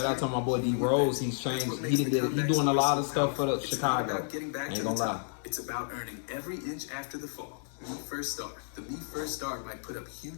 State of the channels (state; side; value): silent; right; digital silence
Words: out to my boy D Rose. He's changed. He doing a lot of stuff for the Chicago. Ain't gonna lie. It's about earning every inch after the fall. Me First Star. The Me First Star might put up